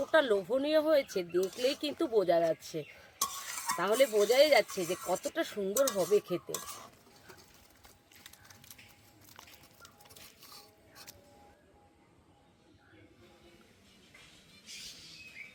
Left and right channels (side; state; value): both; identical; correlation 1.00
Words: লোভনীয় হয়েছে দেখলেই কিন্তু বোঝা যাচ্ছে। তাহলে বোঝাই যাচ্ছে যে কতটা সুন্দর হবে খেতে।